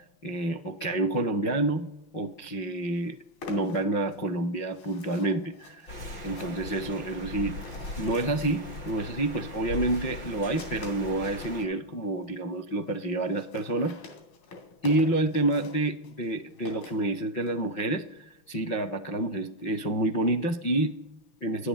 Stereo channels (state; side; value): late; right; 6.0 ms